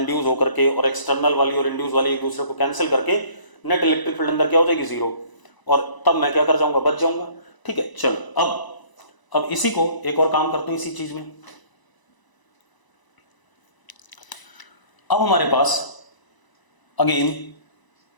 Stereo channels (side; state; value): right; late; 1.0 ms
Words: होकर के, और एक्सटर्नल वाली और इंड्यूस वाली एक दूसरे को कैंसिल करके नेट इलेक्ट्रिक फील्ड अंदर क्या हो जाएगी? जीरो। और तब मैं क्या कर जाऊंगा? बच जाऊंगा, ठीक है। चलो अब इसी को एक और काम करते हैं इसी चीज में। अब हमारे पास अगेन